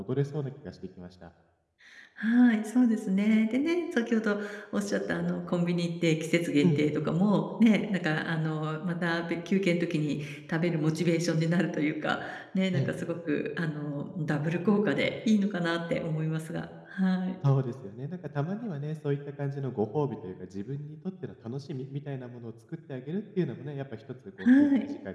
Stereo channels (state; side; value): identical; both; correlation 1.00